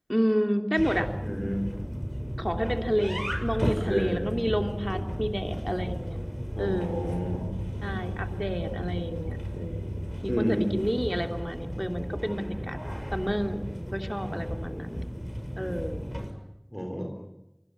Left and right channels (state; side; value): identical; both; correlation 1.00